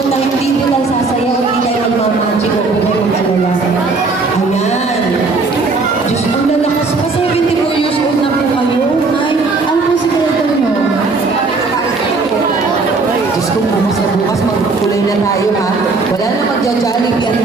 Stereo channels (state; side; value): quieter; left; 3.9 dB